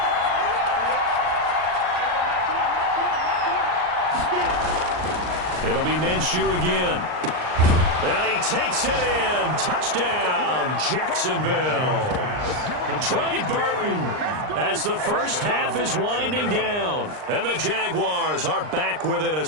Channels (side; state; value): left; late; 39 ms